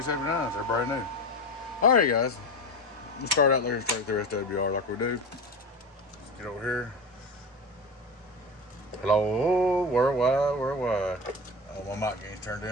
They're brand new. Alright guys. Let's start out there and straight through SWR like we do. Get over here. Hello, worldwide. Oh, my mic gain's turned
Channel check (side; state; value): both; normal; correlation 0.26